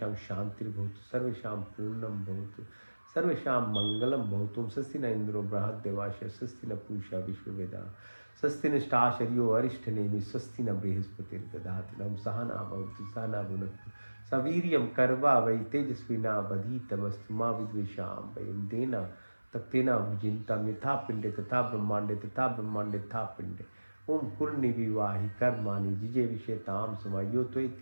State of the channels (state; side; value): inverted; both; correlation -1.00